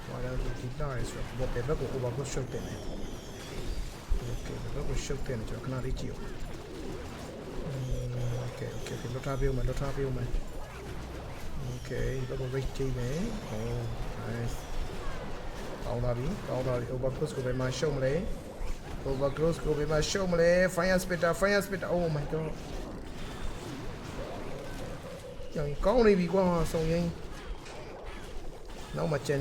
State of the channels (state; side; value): identical; both; correlation 1.00